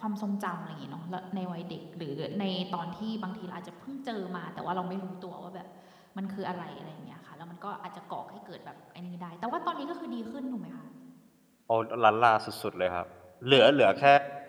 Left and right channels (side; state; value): both; identical; correlation 1.00